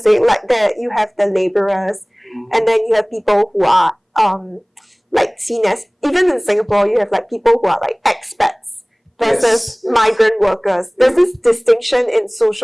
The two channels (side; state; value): both; identical; correlation 1.00